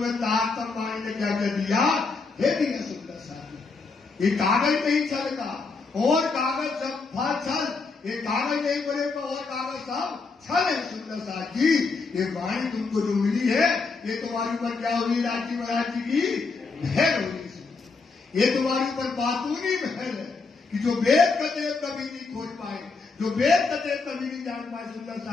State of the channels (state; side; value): quieter; right; 4.3 dB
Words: ताकम वाणी ने क्या कर दिया, दे दिया। सुंदर साथी, ये कागज नहीं छल का, और कागज सब फल छल, ये कागज नहीं बनेगा और कागज सब छल है। सुंदर साथ जी, ये वाणी तुमको जो मिली है, ये तुम्हारे ऊपर क्या होगी, राजी महाराज जी की महर होगी। ये तुम्हारे ऊपर बातूनी महर है, कि जो वेद कतेव कभी नहीं खोज पाए, जो वेद कतेव कभी नहीं जान पाए, सुंदर